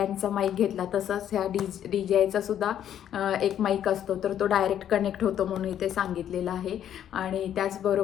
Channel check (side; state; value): right; quieter; 10.3 dB